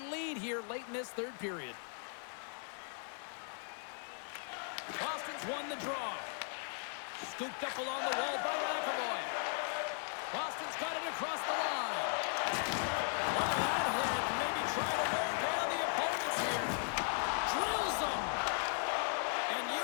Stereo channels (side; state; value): right; silent; 53 dB below the other